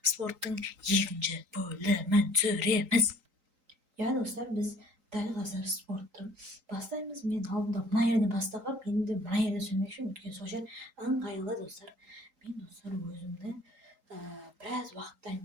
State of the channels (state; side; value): late; left; 3.8 ms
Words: спорттың екінші бөлімін түсіреміз. Ja, достар, біз дәл қазір спортты бастаймыз. Мен алдында мына жерден бастағам, енді мына жерде сөйлемекшімін, өйткені сол жер ыңғайлы достар. Мен достар өзімді біраз уақыттан